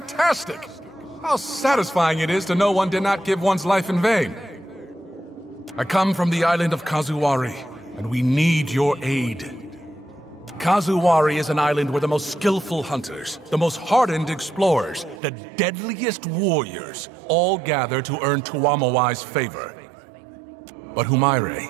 How satisfying it is to know one did not give one's life in vain. I come from the island of Kazuwari, and we need your aid. Kazuwari is an island where the most skillful hunters, the most hardened explorers, the deadliest warriors all gather to earn Tuamawai's favor. But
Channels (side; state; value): left; drops out; at 15.2 s